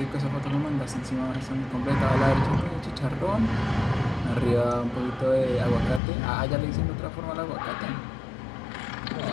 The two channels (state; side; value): drops out; right; at 6.0 s